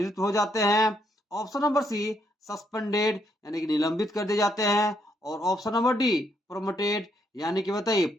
हो जाते हैं। ऑप्शन नंबर सी सस्पेंडेड यानी कि निलंबित कर दिए जाते हैं। और ऑप्शन नंबर डी प्रोमोटेड यानी कि बताइए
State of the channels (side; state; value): both; normal; correlation 0.74